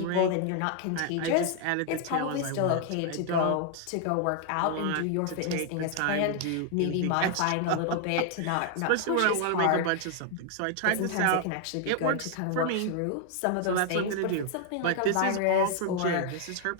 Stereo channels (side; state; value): both; different; correlation 0.00